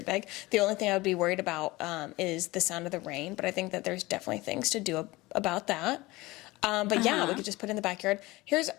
big. The only thing I would be worried about is the sound of the rain. But I think that there's definitely things to do about that. But, yeah, we could just put it in the backyard. Here's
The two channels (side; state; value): right; quieter; 20.7 dB